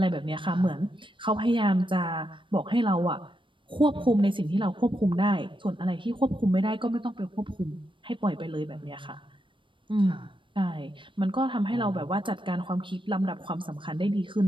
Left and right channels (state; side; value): late; left; 0.24 ms